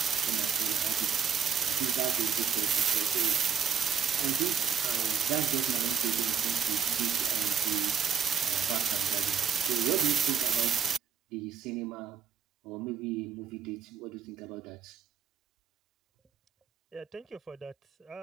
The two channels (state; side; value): quieter; left; 7.7 dB